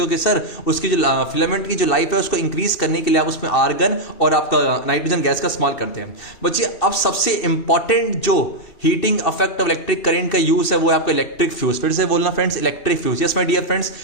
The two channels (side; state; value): right; late; 2.7 ms